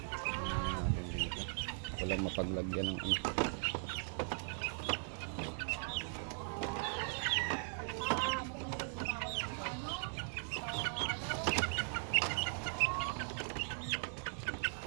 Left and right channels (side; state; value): left; silent; 52 dB below the other